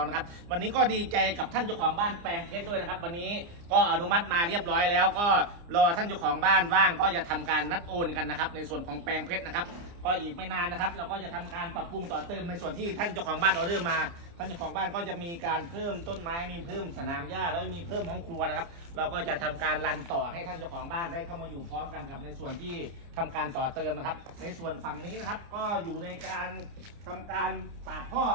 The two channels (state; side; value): late; left; 29 ms